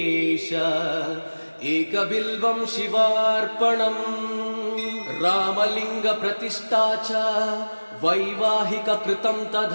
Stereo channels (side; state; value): both; inverted; correlation -1.00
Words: एकबिल्वं शिवार्पणम् रामलिङ्गप्रतिष्ठा च वैवाहिककृतं